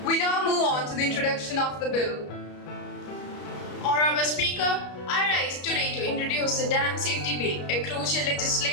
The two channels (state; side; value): late; right; 33 ms